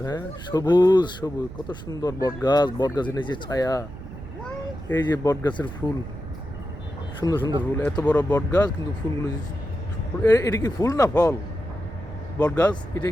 হ্যাঁ, সবুজ সবুজ, কত সুন্দর বট গাছ। বট গাছের নিচে ছায়া, এই যে বট গাছের ফুল, সুন্দর সুন্দর ফুল। এত বড় বট গাছ কিন্তু ফুলগুলো এটা কি ফুল না ফল? বট গাছ এটা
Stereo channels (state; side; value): noise; right; rumble, 13 dB below the sound